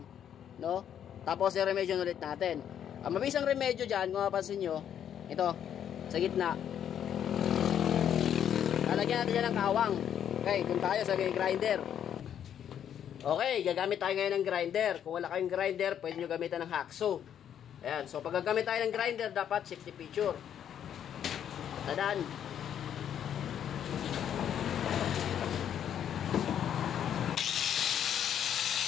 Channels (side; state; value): right; quieter; 9.4 dB